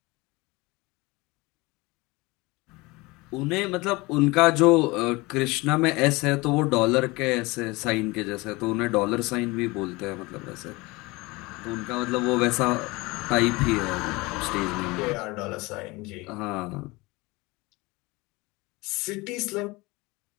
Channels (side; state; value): right; quieter; 23.3 dB